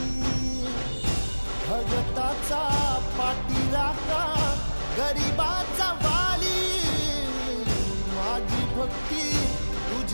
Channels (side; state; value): both; inverted; correlation -1.00